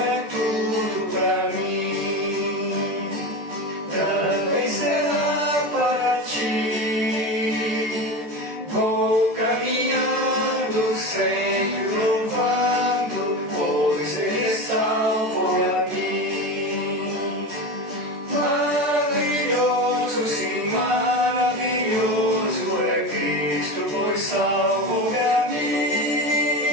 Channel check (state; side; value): late; left; 14 ms